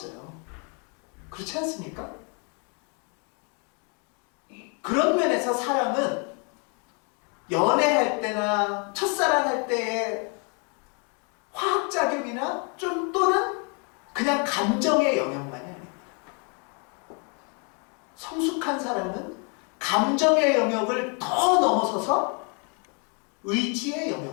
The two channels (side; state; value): right; quieter; 36.4 dB